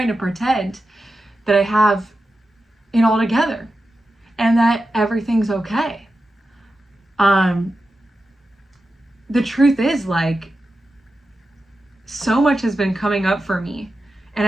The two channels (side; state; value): both; normal; correlation 0.91